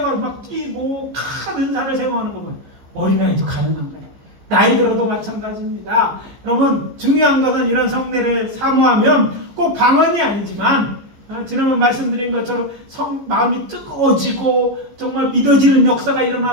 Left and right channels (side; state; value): left; late; 14 ms